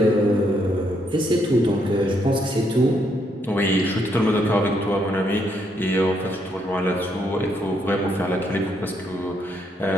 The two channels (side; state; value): both; normal; correlation 0.74